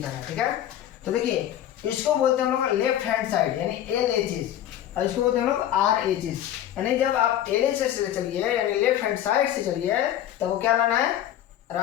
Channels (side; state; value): right; quieter; 11.7 dB